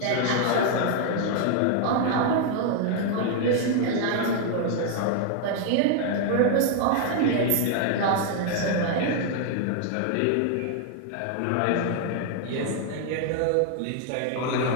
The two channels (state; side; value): different; both; correlation 0.00